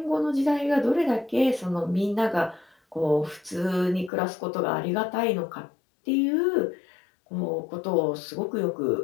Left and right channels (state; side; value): drops out; right; at 4.1 s